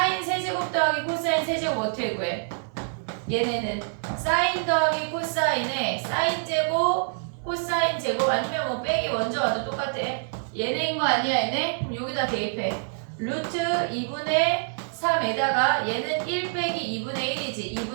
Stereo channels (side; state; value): left; silent; 59 dB below the other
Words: 세제곱 더하기 코사인 세제곱 어떻게 구해? 얘네는 사인 더하기 코사인에 사인 제곱 코사인 제곱 아니면 뭐 빼기 먼저 와도 똑같아. 얘네인 거 아니야 얘네? 그럼 여기다 대입해. 루트 2분의 3에다가 얘는 1 빼기 2분의 1이지.